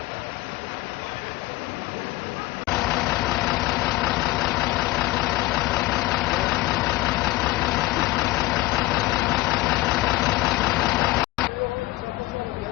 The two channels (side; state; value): right; quieter; 18.5 dB